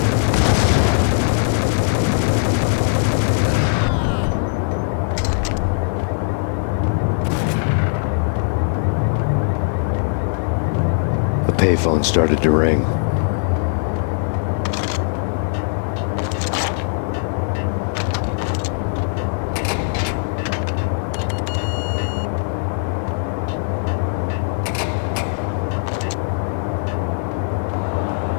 The payphone started to ring.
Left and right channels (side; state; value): right; silent; digital silence